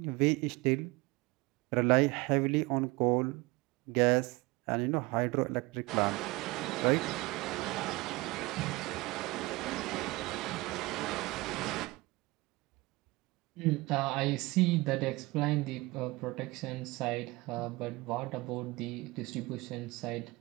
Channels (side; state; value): left; quieter; 22.6 dB